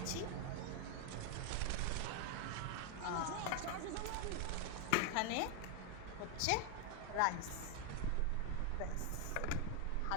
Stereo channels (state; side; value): different; both; correlation 0.00